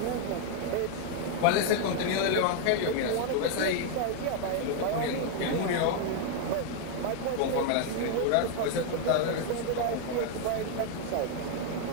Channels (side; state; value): both; different; correlation 0.00